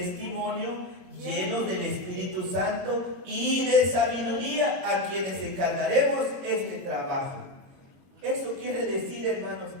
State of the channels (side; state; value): left; late; 22 ms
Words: llenos del Espíritu Santo y de sabiduría, a quienes encargaremos este trabajo. Eso quiere decir, hermanos,